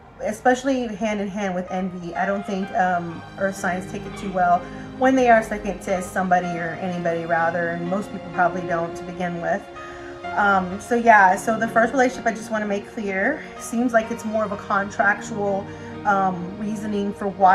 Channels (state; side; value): identical; both; correlation 1.00